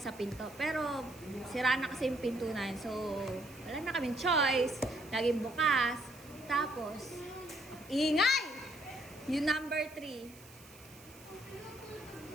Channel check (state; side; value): noise; right; hiss, 21 dB below the sound